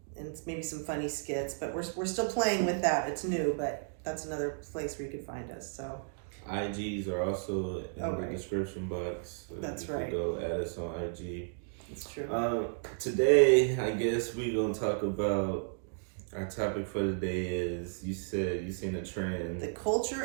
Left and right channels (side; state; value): left; silent; digital silence